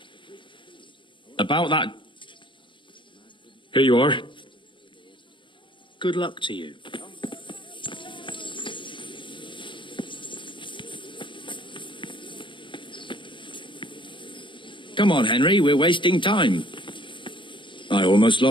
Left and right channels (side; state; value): right; late; 0.24 ms